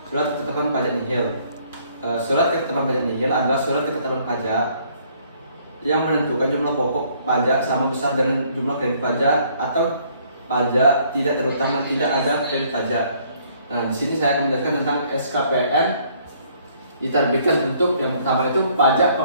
surat ketetapan pajak nihil. Surat ketetapan pajak nihil adalah surat ketetapan pajak yang menentukan jumlah pokok pajak sama besar dengan jumlah kredit pajak atau pajak tidak terutang dan tidak ada kredit pajak. Nah, di sini saya akan menjelaskan tentang SKPN diterbitkan untuk yang pertama itu pajak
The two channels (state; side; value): inverted; both; correlation -0.63